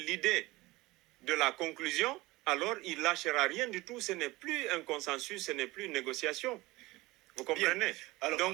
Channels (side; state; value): left; quieter; 20.5 dB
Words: de la conclusion, alors il ne lâchera rien du tout. Ce n'est plus un consensus, ce n'est plus une négociation. Vous comprenez? Alors,